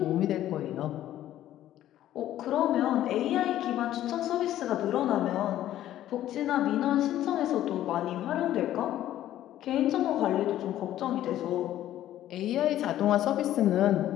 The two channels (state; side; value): quieter; right; 12.9 dB